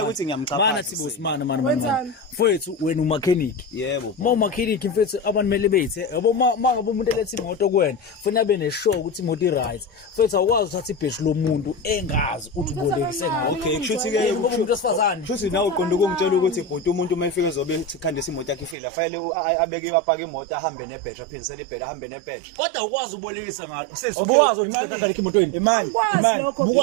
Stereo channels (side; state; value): left; drops out; at 18.8 s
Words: ukuthi ngiyamchapha. mana sibusi mana. Mfethu wena umakheniki. Yebo. Uma umakheniki mfethu abantu mele bethe yabo mangabe umuntu elethe imoto kuwena ufuna abe neshow ukuthi imoto i-right. Mfethu awukwazi uthatha ibhedi lomuntu engazi uthi ubolekise ngayo. Okay, kushuthi ke ngoba umuntu osifazane. Kushuthi nawe uqonda ukungitshela ukuthi bhuti umuntu uma efika ezobe khandisa imoto yakhe ifile afanele abeke apaka imoto ahambe nebhedi aphinisele ibhedi ahambe nebhedi. Kodwa ukwazi ubolekisa ngalo. Sisi ukwazi ukuthi uthatha emotweni. imani.